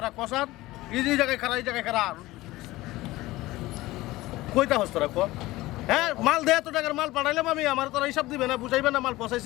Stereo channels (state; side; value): quieter; right; 18.4 dB